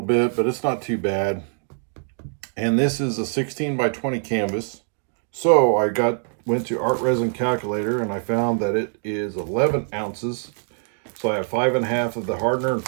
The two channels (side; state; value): left; silent; digital silence